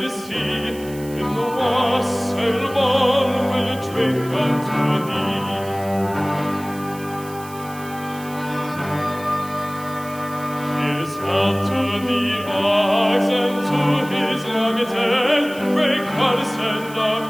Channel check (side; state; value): right; noise; hiss, 18 dB below the sound